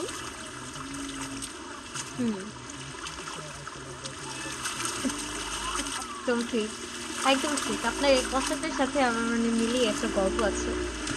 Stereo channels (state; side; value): identical; both; correlation 1.00